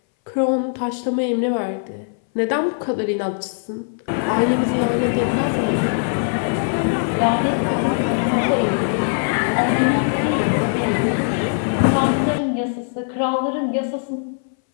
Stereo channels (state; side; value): silent; right; 62 dB below the other